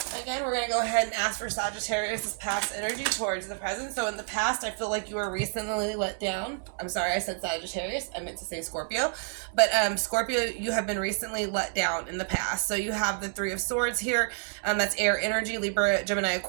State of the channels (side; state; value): left; silent; 59 dB below the other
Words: again, we're going to go ahead and ask for Sagittarius' past energy towards the present. So, in the past, I feel like you were recently let down. I'm sorry, I said Sagittarius. I meant to say Scorpio. But, Scorpio, you have been recently let down in the past. So, you have the Three of Swords here. That's air energy, Libra, Gemini,